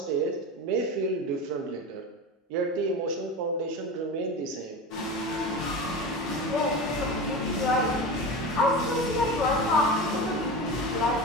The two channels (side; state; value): both; normal; correlation 0.26